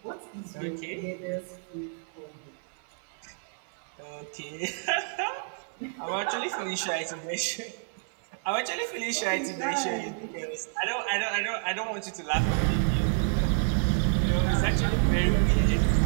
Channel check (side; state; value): left; silent; 58 dB below the other